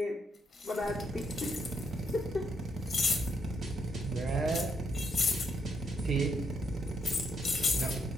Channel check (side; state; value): both; normal; correlation 0.76